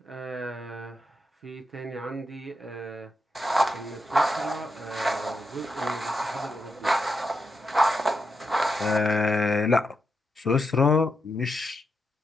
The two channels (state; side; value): normal; both; correlation 0.84